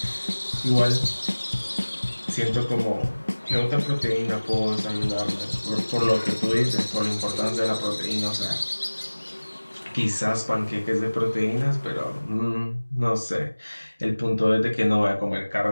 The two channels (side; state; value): both; inverted; correlation -1.00